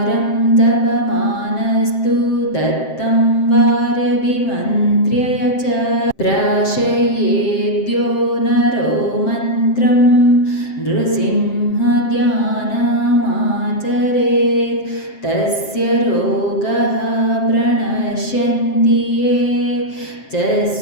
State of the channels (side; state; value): right; late; 7.6 ms